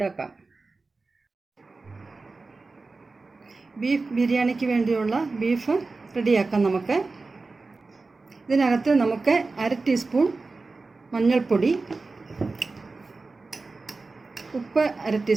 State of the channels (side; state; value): left; quieter; 3.8 dB